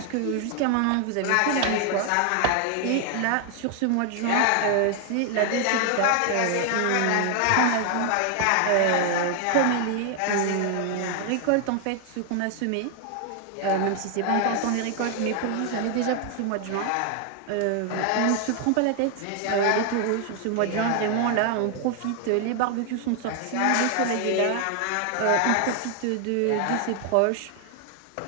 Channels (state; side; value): different; both; correlation 0.00